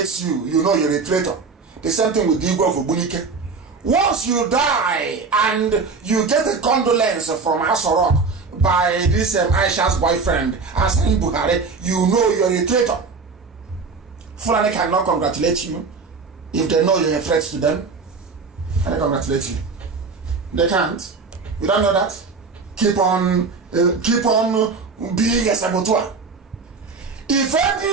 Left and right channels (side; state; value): left; quieter; 4.6 dB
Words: you, you know you're a traitor. The same thing with Igbo of Obunike. Once you die and you get a condolence from Asoro by this Aisha's boyfriend, Asani Buhari, you know you're a traitor. Fulani cannot congratulate you if they know you're a threat to them. And they congratulate you. They can't. You don't know that? Keep on being a saboteur. If